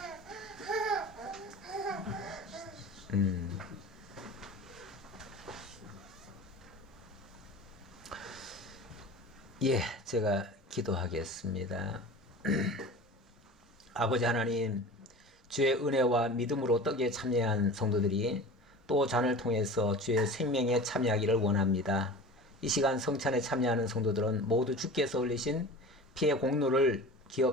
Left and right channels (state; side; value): normal; both; correlation 0.36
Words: 예, 제가 기도하겠습니다. 아버지 하나님, 주의 은혜와 믿음으로 떡에 참여한 성도들이 또 잔을 통해서 주의 생명에 참여하기를 원합니다. 이 시간 성찬에 참여하는 성도들은 모두 주께서 흘리신 피의 공로를